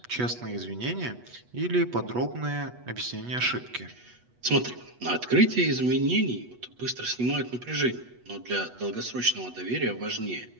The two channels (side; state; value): left; late; 8.2 ms